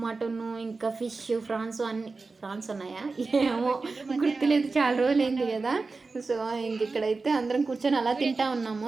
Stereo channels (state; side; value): quieter; left; 4.0 dB